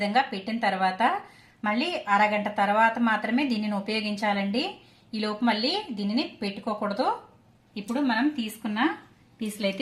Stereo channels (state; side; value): identical; both; correlation 1.00